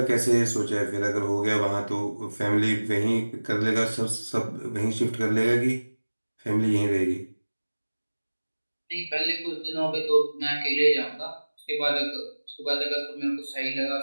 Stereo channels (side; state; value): both; inverted; correlation -1.00